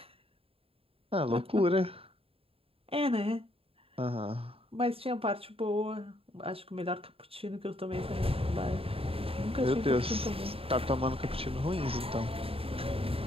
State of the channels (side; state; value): left; late; 0.27 ms